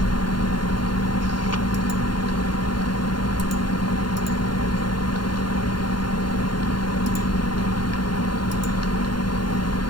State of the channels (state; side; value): late; right; 0.71 ms